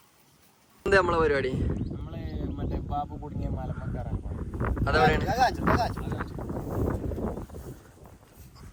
എന്താ നമ്മളെ പരിപാടി? നമ്മള് മറ്റേ ബാബു കുടുങ്ങിയ മലമക്കാരാണ്.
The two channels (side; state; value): both; identical; correlation 1.00